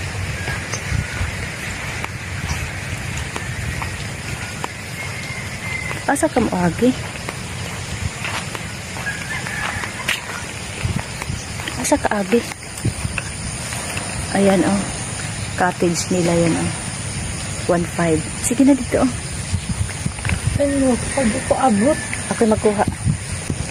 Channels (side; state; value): both; identical; correlation 1.00